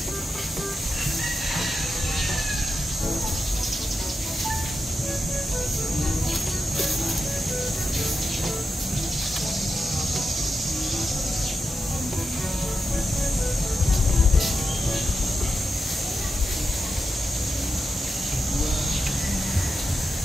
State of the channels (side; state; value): both; normal; correlation 0.89